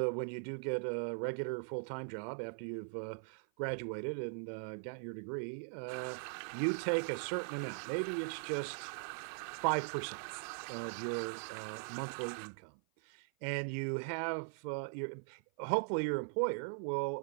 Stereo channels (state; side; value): silent; left; 51 dB below the other